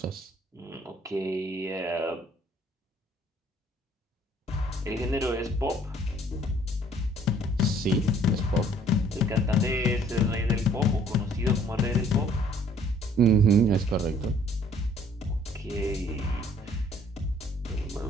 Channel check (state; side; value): normal; both; correlation 0.59